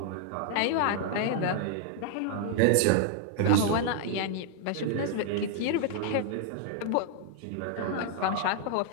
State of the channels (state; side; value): different; both; correlation 0.00